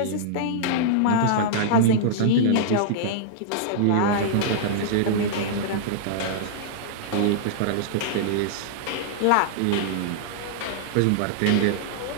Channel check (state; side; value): different; both; correlation -0.02